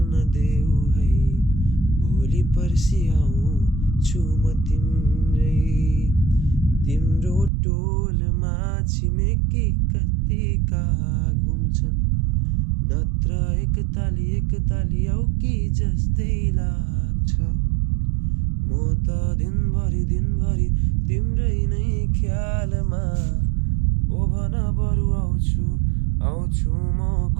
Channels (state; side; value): drops out; left; at 7.5 s